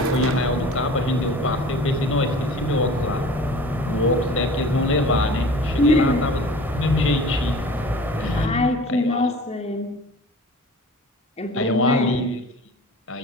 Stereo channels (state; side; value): normal; both; correlation 0.42